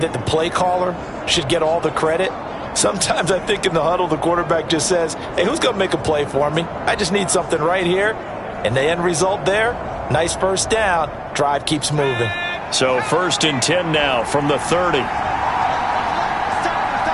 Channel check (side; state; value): both; identical; correlation 1.00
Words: that the play caller should get all the credit. Sometimes I think in the huddle, the quarterback just says, hey, who's going to make a play for me? I just need something right here. And the end result there, nice first down. Drive keeps moving. So 1st and 10 now from the 30.